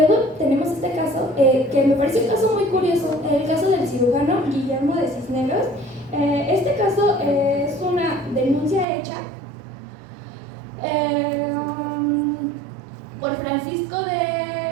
tenemos este caso que me parece un caso muy curioso, el caso del cirujano Guillermo de Cisneros. Este caso es una denuncia hecha por Francisco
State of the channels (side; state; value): left; drops out; at 8.8 s